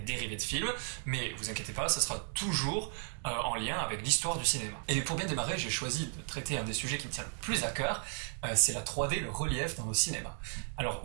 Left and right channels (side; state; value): left; silent; 55 dB below the other